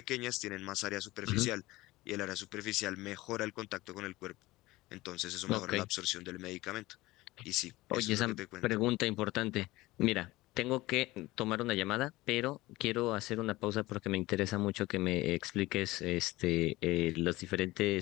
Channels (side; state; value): right; quieter; 19.2 dB